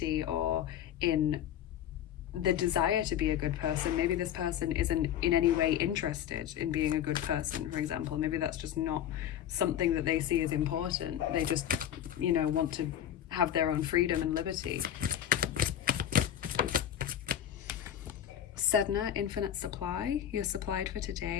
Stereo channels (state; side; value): quieter; right; 10.4 dB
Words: or in the desire to be a good person. Maybe this person isn't in any way interested in being a good person, for example. Maybe that's just not something that they see as important. They just, you know, want to have their own freedom and liberty. Seidr, infinite supply. You're supplied for